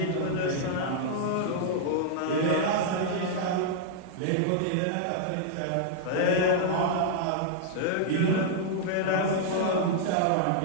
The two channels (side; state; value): both; different; correlation -0.01